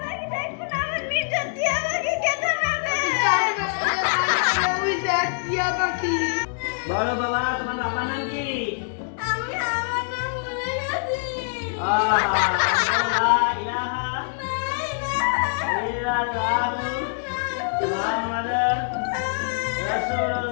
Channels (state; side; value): silent; right; digital silence